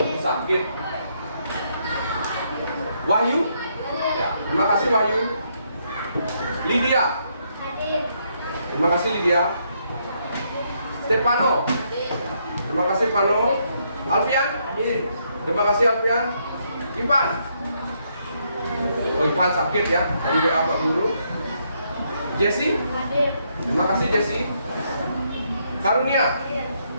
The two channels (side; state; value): both; inverted; correlation -0.75